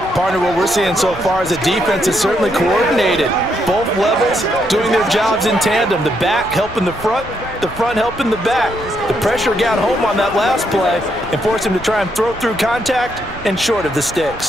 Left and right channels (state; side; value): normal; both; correlation 0.77